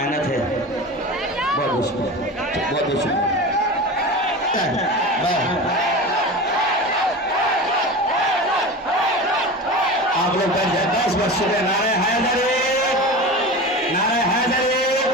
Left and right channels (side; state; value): both; normal; correlation 0.30